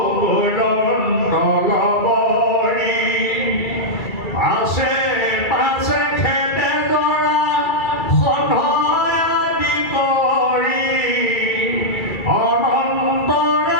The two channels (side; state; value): right; late; 2.3 ms